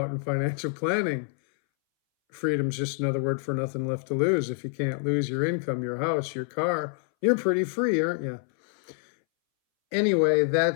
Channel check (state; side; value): silent; right; 60 dB below the other